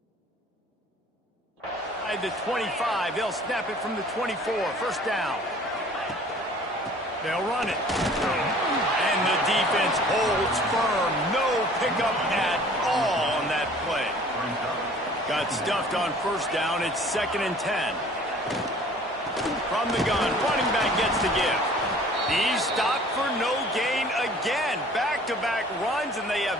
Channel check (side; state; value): both; normal; correlation 0.50